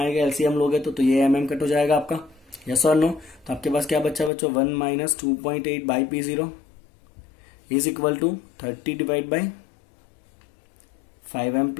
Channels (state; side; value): drops out; right; at 4.3 s